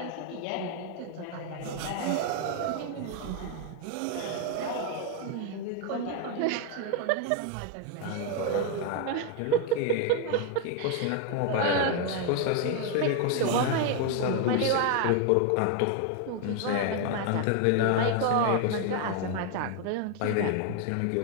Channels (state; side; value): different; both; correlation 0.01